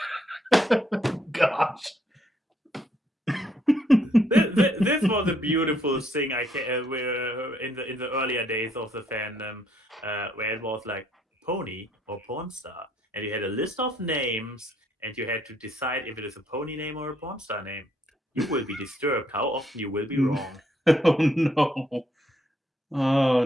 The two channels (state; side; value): normal; both; correlation 0.71